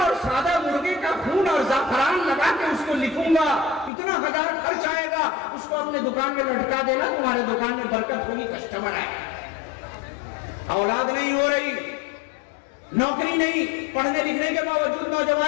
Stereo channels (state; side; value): drops out; right; at 3.9 s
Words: اور سادہ مرغے کا خون اور زعفران لگا کے اس کو لکھوں گا، اتنا ہزار خرچ آئے گا، اس کو اپنے دکان میں لٹکا دینا، تمہارے دکان میں برکت ہوگی، کسٹمر آئے۔ اولاد نہیں ہو رہی، نوکری نہیں، پڑھنے لکھنے کے باوجود